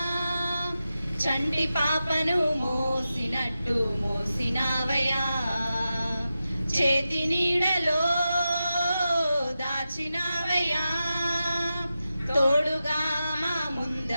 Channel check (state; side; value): inverted; both; correlation -0.91